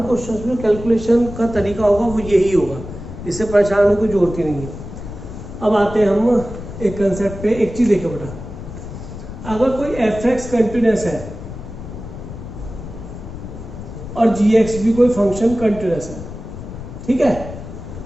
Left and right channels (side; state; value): left; noise; rumble, 11 dB below the sound